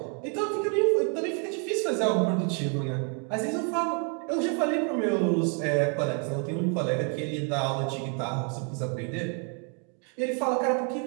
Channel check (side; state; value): left; quieter; 39.9 dB